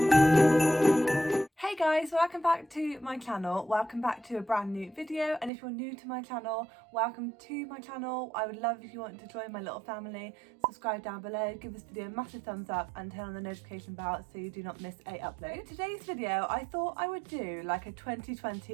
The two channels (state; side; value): drops out; left; at 5.5 s